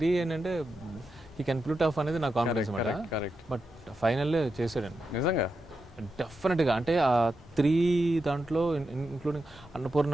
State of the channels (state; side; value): normal; both; correlation 0.87